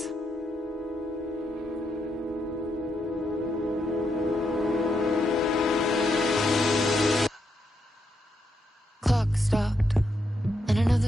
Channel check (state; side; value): normal; both; correlation 0.80